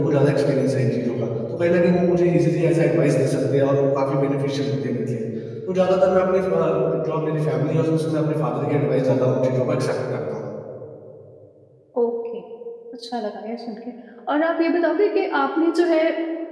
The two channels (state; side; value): identical; both; correlation 1.00